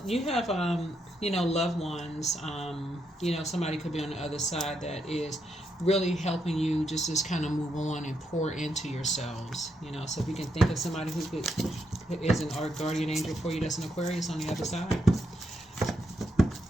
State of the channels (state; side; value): normal; both; correlation 0.80